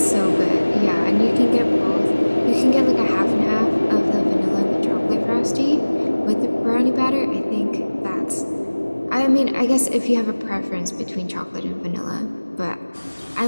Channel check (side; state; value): both; inverted; correlation -1.00